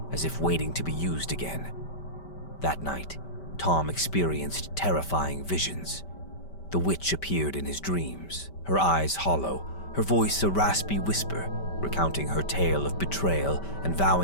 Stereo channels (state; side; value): late; right; 5.1 ms